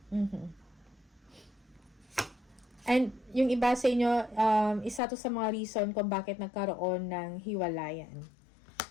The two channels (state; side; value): drops out; right; at 5.0 s